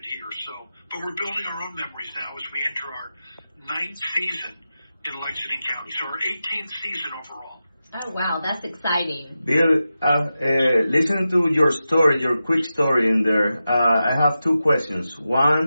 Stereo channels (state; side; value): inverted; both; correlation -0.91